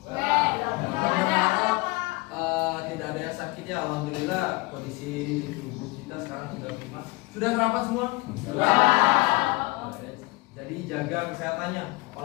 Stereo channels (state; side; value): quieter; right; 23.7 dB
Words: Tidak. Tidak ada yang sakit ya. Alhamdulillah kondisi tubuh kita sekarang sudah prima. Sudah sarapan semua? Sudah. Jadi jaga kesehatannya.